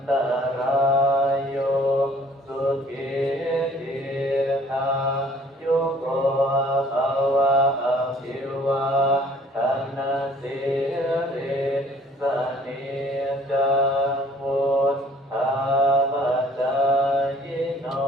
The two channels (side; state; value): both; normal; correlation 0.56